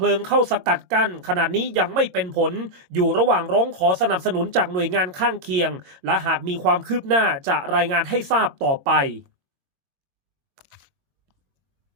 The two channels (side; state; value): left; late; 22 ms